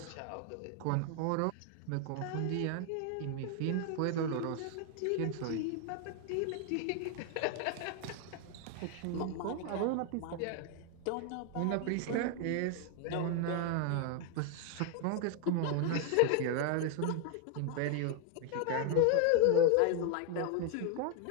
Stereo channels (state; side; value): different; both; correlation 0.01